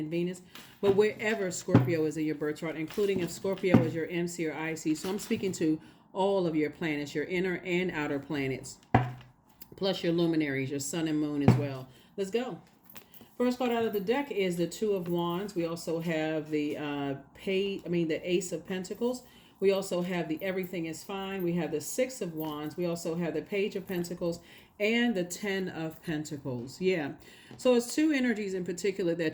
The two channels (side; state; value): both; identical; correlation 1.00